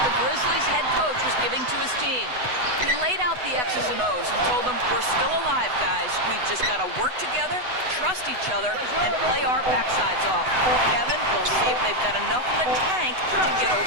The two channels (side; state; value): left; late; 8.0 ms